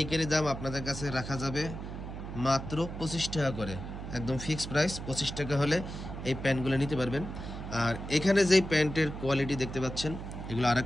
দাম আপনাদের কাছে রাখা যাবে মাত্র 25 টাকা করে। একদম ফিক্সড প্রাইস 25 টাকা হলে এই প্যান্টগুলো নিতে পারবেন। আর এখানে যেই প্যান্টের কোয়ালিটি দেখতে পাচ্ছেন, এগুলো আর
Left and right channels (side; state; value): right; noise; hum, 8 dB below the sound